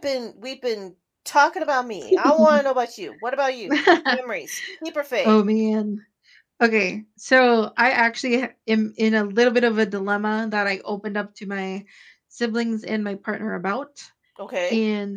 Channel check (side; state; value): both; identical; correlation 1.00